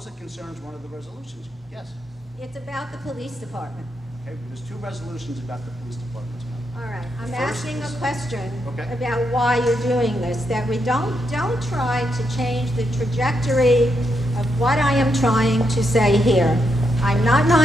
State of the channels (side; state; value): both; normal; correlation 0.81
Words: it concerns one of the resolutions, yes. It's about the police department. Okay, there's two resolutions about the police department tonight. All right, I'm First asking a is- question Okay. about why you're doing this, that we don't try to change the trajectory of what I am trying to say here. I'm not